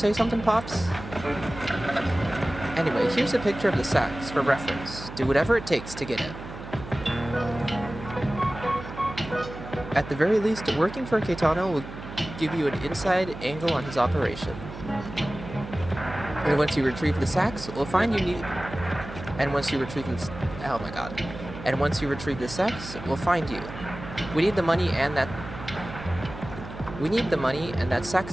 something, Pops? Anyway, here's a picture of the sax for reference. Do whatever it takes to get it. At the very least, working for Caetano will give you an inside angle on his operation. And once you retrieve the sax, we'll find you need... And once you retrieve the... Oh my god. And once you retrieve the sax, we'll find you. We need the money and that... We need the money, and that sax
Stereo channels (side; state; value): right; noise; hum, 12 dB below the sound